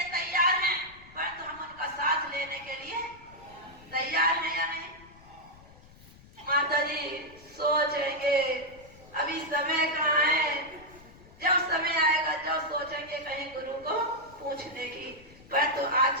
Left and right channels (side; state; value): left; noise; rumble, 23 dB below the sound